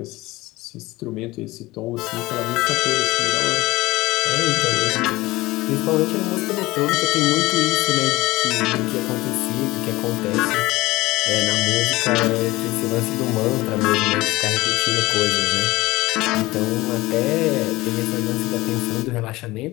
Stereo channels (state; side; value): quieter; right; 19.9 dB